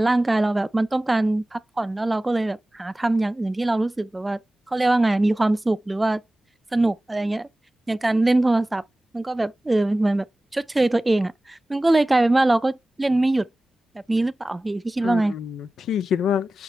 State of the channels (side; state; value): both; normal; correlation 0.97